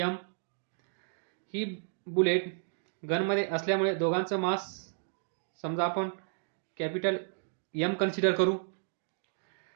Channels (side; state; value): left; silent; digital silence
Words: m, ही बुलेट गनमध्ये असल्यामुळे दोघांचं मास समजा आपण कॅपिटल M कन्सिडर करू.